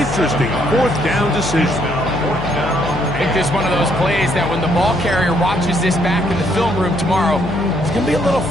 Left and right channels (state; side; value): noise; left; hum, 8 dB below the sound